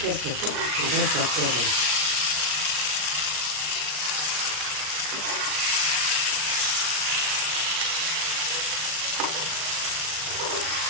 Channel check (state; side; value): late; left; 39 ms